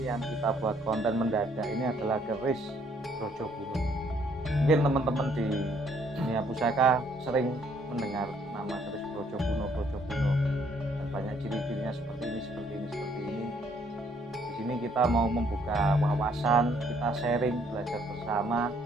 yang kita buat konten mendadak ini adalah keris Brojokuno. Mungkin teman-teman di dunia pusaka sering mendengar nama keris Brojokuno dan banyak ciri-cirinya seperti ini. Di sini kita mau membuka wawasan, kita sharing, belajar bersama,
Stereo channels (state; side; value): normal; both; correlation 0.66